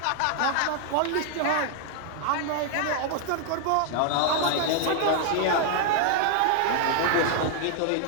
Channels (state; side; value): different; both; correlation 0.00